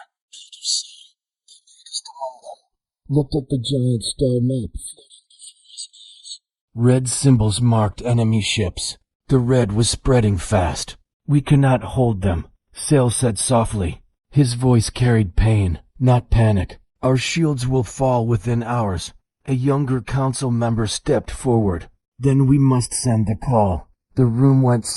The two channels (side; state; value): both; identical; correlation 1.00